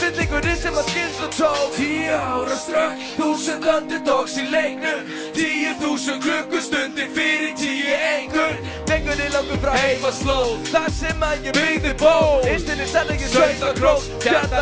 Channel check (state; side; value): identical; both; correlation 1.00